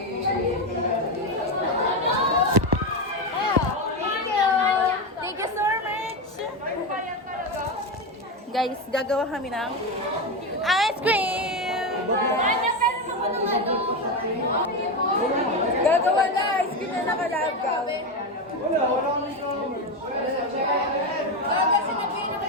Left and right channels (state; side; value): normal; both; correlation 0.13